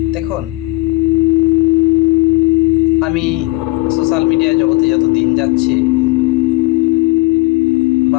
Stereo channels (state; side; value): quieter; right; 21.2 dB